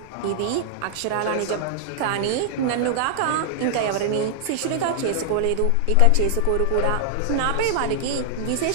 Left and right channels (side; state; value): both; different; correlation -0.01